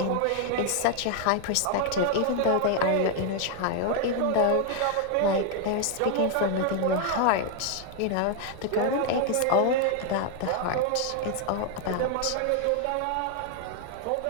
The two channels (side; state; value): both; different; correlation 0.00